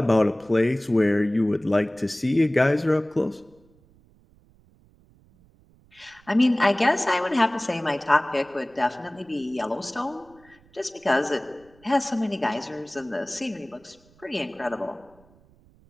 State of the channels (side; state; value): right; noise; rumble, 30 dB below the sound